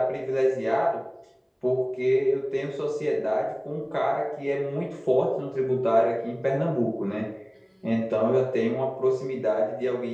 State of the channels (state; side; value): identical; both; correlation 1.00